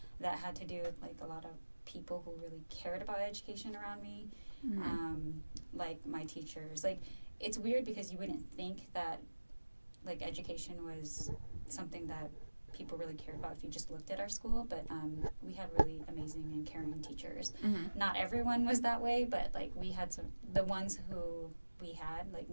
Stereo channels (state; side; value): inverted; both; correlation -1.00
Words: that had to do with, a lot of people who really cared about education around me, like my teachers. It's weird because you wouldn't think that, education was something that people really cared about if you just looked at our school, but we had really amazing and caring teachers. Not everyone was that way, but we had the ones who we had